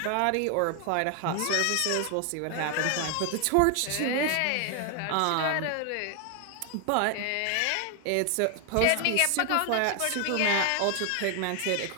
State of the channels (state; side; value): different; both; correlation 0.00